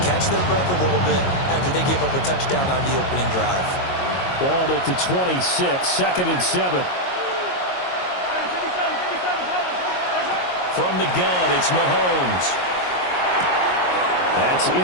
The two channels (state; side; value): late; right; 22 ms